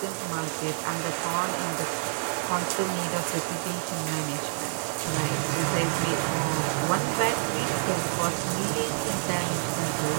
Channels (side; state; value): left; silent; 59 dB below the other